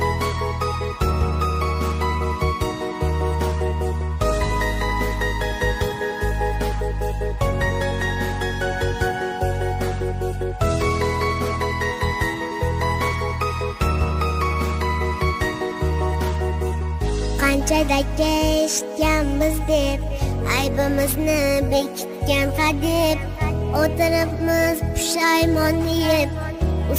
Qanchadaka eshitganmiz deb, aybimizni bekitgan hadeb, o'tiribmiz pushaymon yeb.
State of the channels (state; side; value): identical; both; correlation 1.00